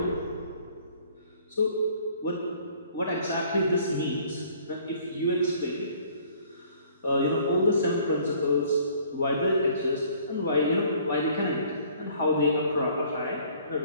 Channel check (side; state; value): both; inverted; correlation -0.56